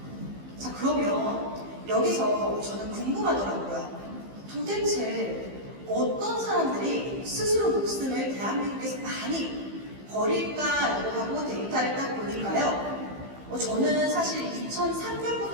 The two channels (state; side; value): late; left; 15 ms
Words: 자, 그러면 여기서 저는 궁금하더라고요. 도대체 어떤 사람들이 스스로 목숨을 대한민국에서 많이 버릴까라고 하고 데이터를 딱 보니까요. 저는 사실